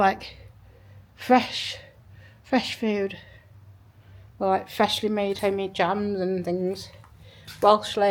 fresh food. Or like freshly made homemade jams and things. Welsh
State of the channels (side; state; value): both; identical; correlation 1.00